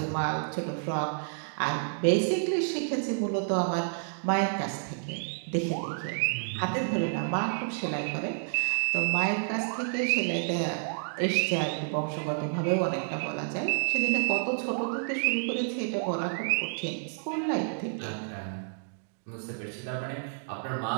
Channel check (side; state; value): left; silent; digital silence